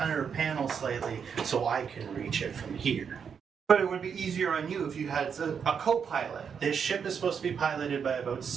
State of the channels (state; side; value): quieter; left; 6.8 dB